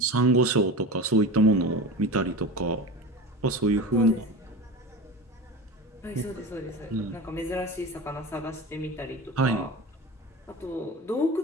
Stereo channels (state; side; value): normal; both; correlation 0.29